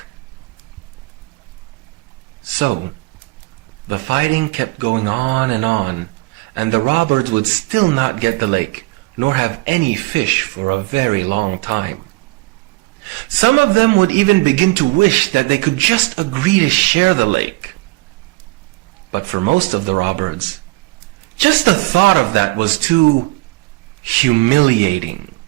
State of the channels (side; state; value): left; quieter; 23.2 dB